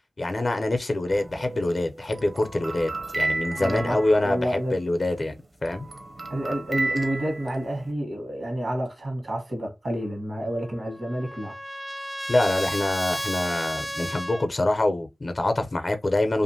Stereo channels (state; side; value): normal; both; correlation 0.97